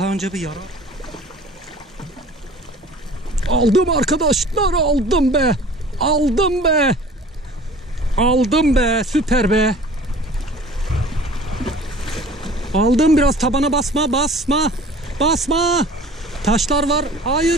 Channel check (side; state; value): both; normal; correlation 0.45